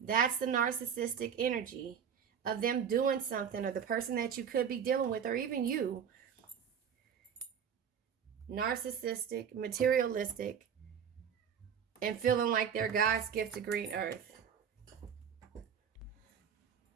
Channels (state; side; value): quieter; left; 7.7 dB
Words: That's the narcissistic energy of them doing something, or the person that you could be dealing with, or even you. Narcissistic, materialistic, and feeling like they're God's gift to green earth.